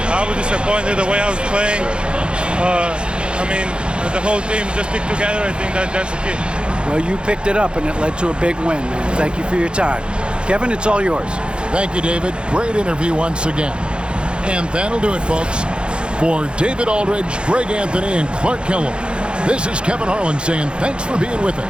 I was disappointed the way I was playing. The whole team just stick together. I think that's the key. Well, you picked it up, and it led to a big win, man. Thank you for your time. Kevin, it's all yours. Thank you, David. Great interview once again. And that'll do it, folks. For David Aldridge, Greg Anthony, and Clark Kellogg, this is Kevin Harlan saying thanks for being with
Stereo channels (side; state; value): left; late; 0.054 ms